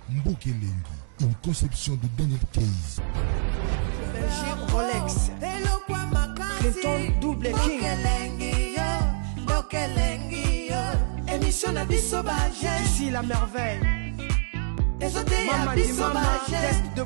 Mbokelengi, une conception de Daniel Case. Rolex, Clinton Double King, émission de Bissobage, ici la merveille. Mama di mama, test de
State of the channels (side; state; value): left; silent; digital silence